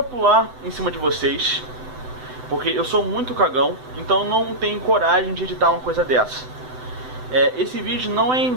pular em cima de vocês, porque eu sou muito cagão, então não tenho coragem de editar uma coisa dessa. Esse vídeo não é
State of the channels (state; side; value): late; left; 7.9 ms